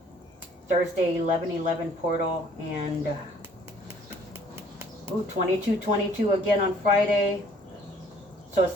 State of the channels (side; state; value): both; normal; correlation 0.58